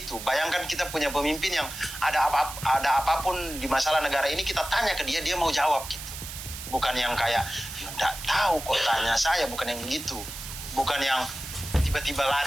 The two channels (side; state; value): right; noise; hiss, 10 dB below the sound